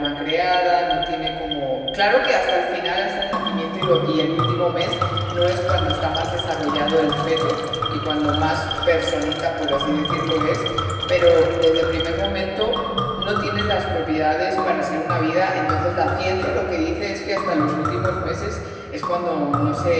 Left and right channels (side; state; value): both; identical; correlation 1.00